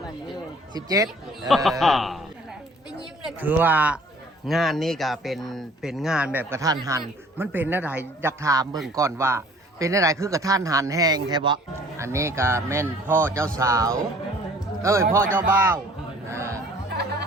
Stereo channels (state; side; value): normal; both; correlation 0.53